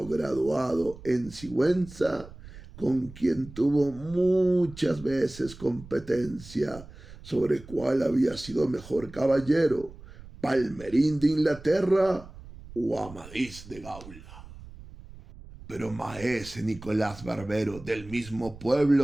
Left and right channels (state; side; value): noise; right; rumble, 17 dB below the sound